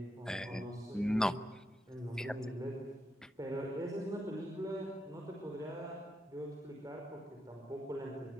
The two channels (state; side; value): normal; both; correlation 0.84